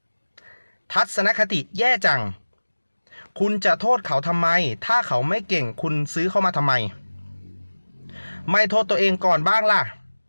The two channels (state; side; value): inverted; both; correlation -1.00